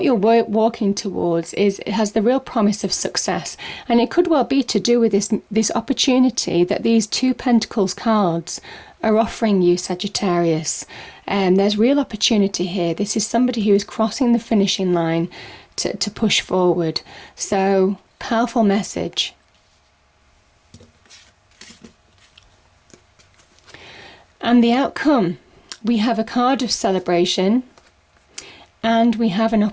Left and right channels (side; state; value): both; identical; correlation 1.00